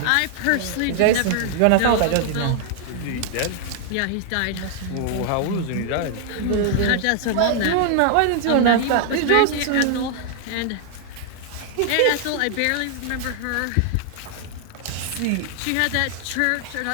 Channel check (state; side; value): different; both; correlation 0.00